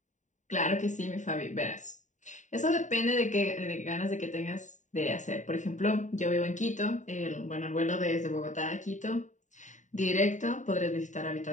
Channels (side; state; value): right; late; 0.36 ms